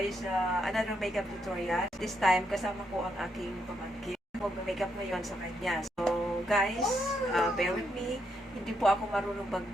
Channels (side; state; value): both; normal; correlation 0.78